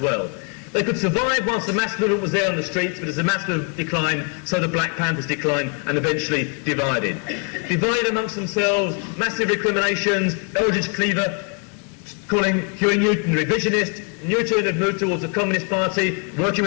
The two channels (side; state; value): right; quieter; 38.2 dB